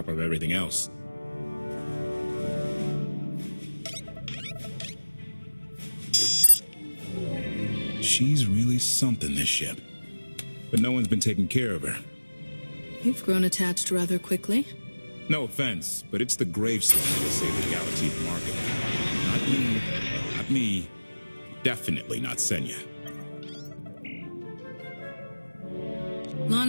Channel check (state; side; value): inverted; both; correlation -1.00